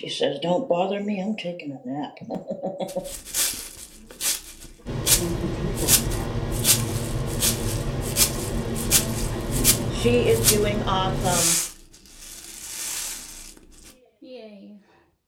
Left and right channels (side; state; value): both; identical; correlation 1.00